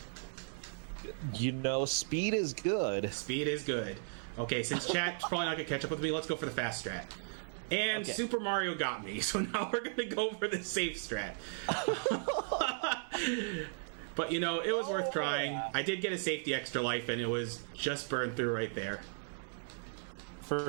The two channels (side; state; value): left; silent; digital silence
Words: You know, speed is good. Speed is good. Okay, since chat's probably not going to catch up with me, let's go for the fast strat. And okay. Super Mario got me, so now we're going to go for the safe strat. But, you know, it was worth trying. I did get a safety extra life, and it was just burned through right there.